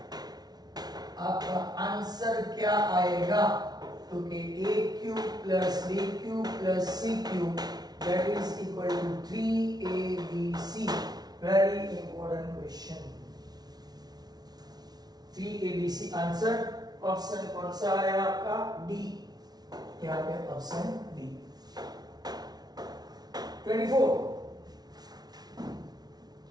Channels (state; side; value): late; left; 0.19 ms